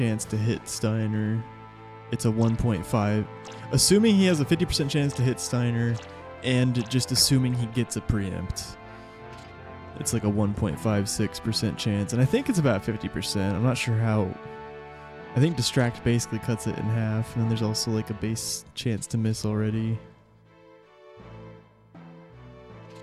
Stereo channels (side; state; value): both; identical; correlation 1.00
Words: to hit Steiner, it's a 1.5. Assuming he has a 50% chance to hit Steiner, and just assuming he gets a preempt, it's like a 1.56% chance. And I think it's about 50%. I'm not sure how. I think Distract basically cuts it in half, and then there's also like a base chance to miss already.